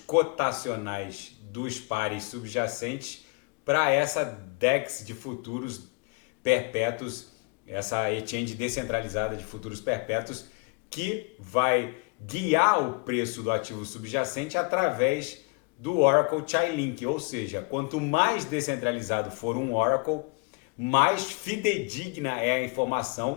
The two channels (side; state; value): right; quieter; 30.0 dB